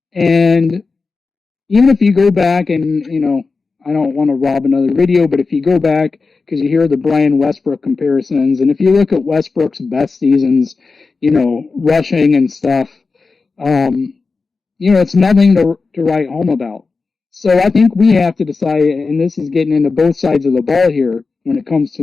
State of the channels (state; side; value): quieter; right; 4.3 dB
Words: And even if you go back and, I don't want to rob another video, but if you go back, because you hear the Brian Westbrook comparisons, and if you look at Westbrook's best seasons, rushing and stuff, it's nothing to write home about. So I think we have to decide, and this is getting into both sides of the ball here when it comes